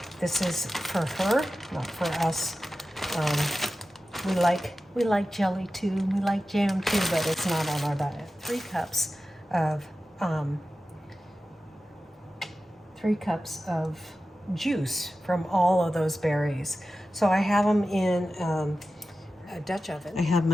this is for her, not for us. We like jelly too, we like jam too, but it's not on our diet. 3 cups of juice from all of those berries. So I have them in a Dutch oven. I have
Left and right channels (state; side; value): normal; both; correlation 0.94